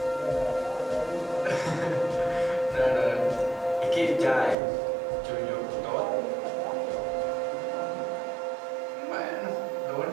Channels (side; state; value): left; drops out; at 4.5 s